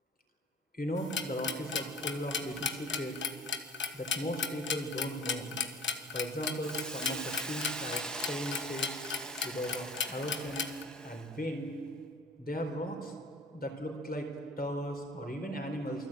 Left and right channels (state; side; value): normal; both; correlation 0.45